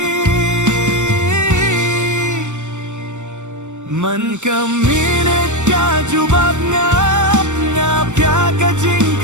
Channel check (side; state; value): left; late; 0.84 ms